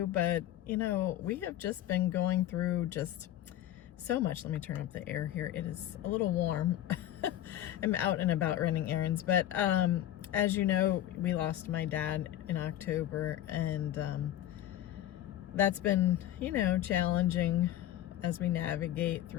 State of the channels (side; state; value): right; quieter; 12.6 dB